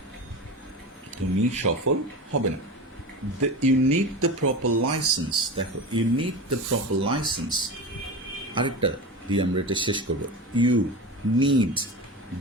তুমি সফল হবে না। You need the proper license, দেখো you need the proper license, আরেকটা দিয়ে আমরা এটা শেষ করবো, you need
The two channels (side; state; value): both; normal; correlation 0.27